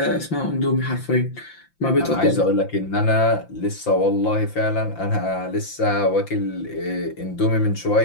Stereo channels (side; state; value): right; late; 5.8 ms